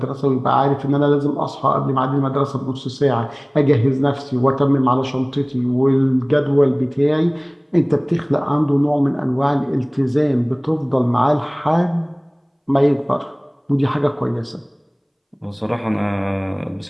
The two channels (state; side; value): identical; both; correlation 1.00